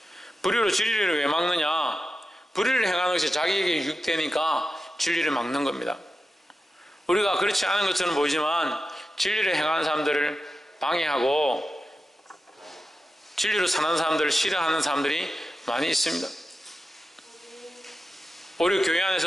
불의로 진리를 왜 막느냐? 불의를 행하는 것이 자기에게 유익되니까 진리를 막는 겁니다. 우리가 그렇지 않은 것처럼 보이지만 진리를 행하는 사람들을 방해하고 진리로 사는 사람들을 싫어하는 사람들이 많이 있습니다. 오히려 교회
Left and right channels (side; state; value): both; normal; correlation 0.91